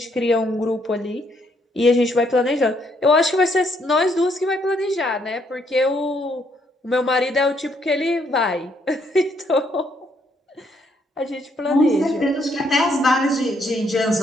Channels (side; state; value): both; normal; correlation 0.71